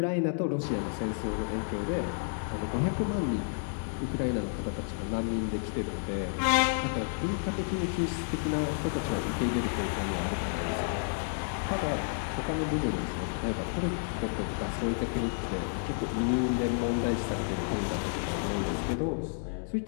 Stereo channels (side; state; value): right; silent; digital silence